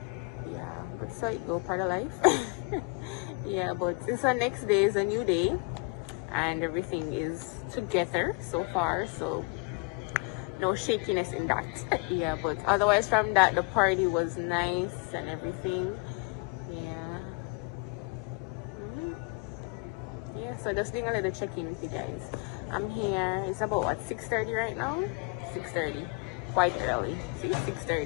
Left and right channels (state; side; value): quieter; right; 28.8 dB